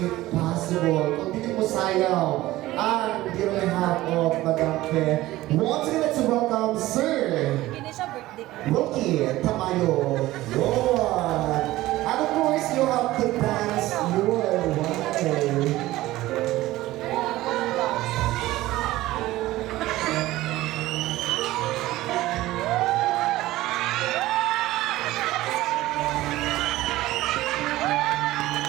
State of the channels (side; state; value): left; quieter; 16.9 dB